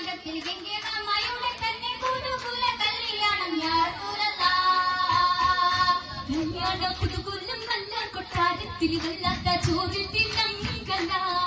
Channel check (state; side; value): identical; both; correlation 1.00